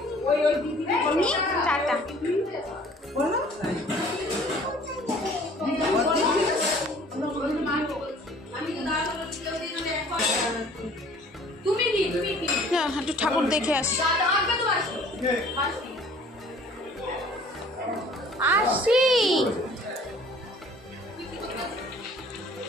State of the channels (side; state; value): both; normal; correlation 0.52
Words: জিনি টাটা। একটু ঠাকুর দেখে আসি। আসি